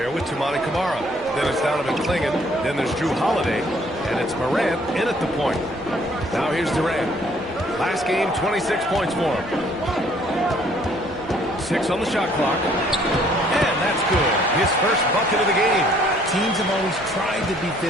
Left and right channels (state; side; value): normal; both; correlation 0.61